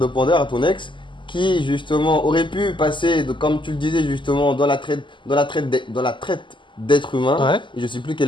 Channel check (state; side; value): late; right; 0.24 ms